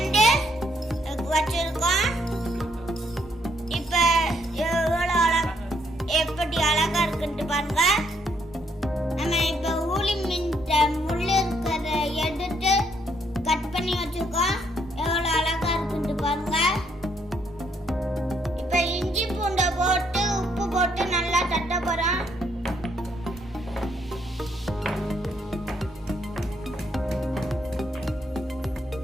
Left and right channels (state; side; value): normal; both; correlation 0.72